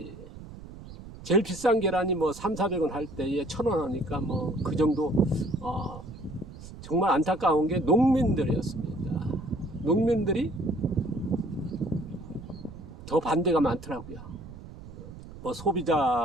제일 비싼 계란이 뭐 300~400원 할 때에 1,000원 하니까 뭐 그 정도 정말 안타까운 게 농민들이었습니다. 농민들이 더 반대가 많더라고요. 뭐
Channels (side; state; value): right; noise; rumble, 15 dB below the sound